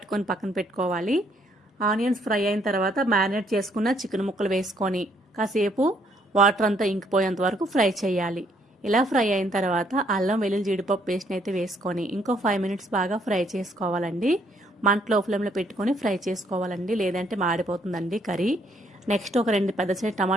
పక్కన పెట్టుకోవాలి. ఆనియన్స్ ఫ్రై అయిన తర్వాత మ్యారినేట్ చేసుకున్న చికెన్ ముక్కలు వేసుకొని కాసేపు వాటర్ అంతా ఇంకిపోయేంత వరకు ఫ్రై చేయాలి. ఇలా ఫ్రై అయిన తర్వాత అల్లం వెల్లుల్లి జీడిపప్పు పేస్ట్ని అయితే వేసుకొని ఇంకో 5 మినిట్స్ బాగా ఫ్రై చేసుకోవాలండి. మంట లో ఫ్లేమ్లో పెట్టుకొని ఫ్రై చేసుకోవాలండి, లేదంటే మాడిపోతుందండి కర్రీ. నెక్స్ట్ ఒక 2 పెద్ద సైజు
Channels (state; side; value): normal; both; correlation 0.68